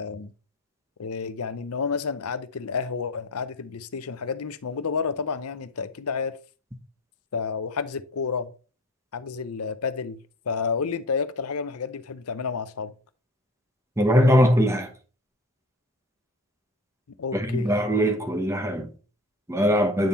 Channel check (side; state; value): both; normal; correlation 0.39